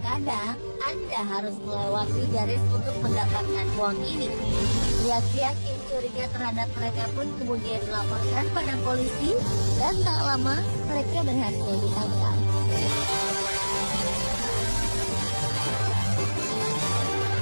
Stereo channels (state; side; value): inverted; both; correlation -1.00